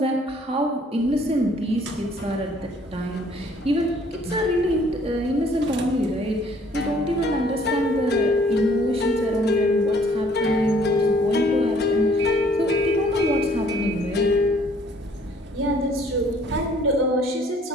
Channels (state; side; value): normal; both; correlation 0.59